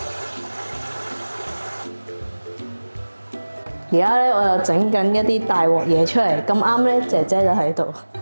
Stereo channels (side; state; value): both; inverted; correlation -1.00